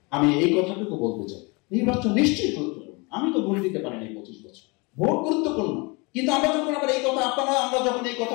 আমি এই কথাটুকু বলতে চাই, নির্বাচন নিশ্চয়ই গুরুত্বপূর্ণ। আমি তো ভোট দিতে পারিনি 25 বছর, ভোট গুরুত্বপূর্ণ। কিন্তু আমরা যখন আবার এই কথা আমরা যখন এই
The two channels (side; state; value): right; quieter; 28.2 dB